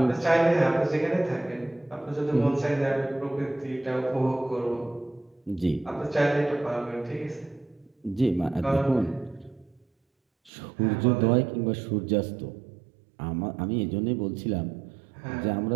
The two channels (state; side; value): drops out; left; at 10.5 s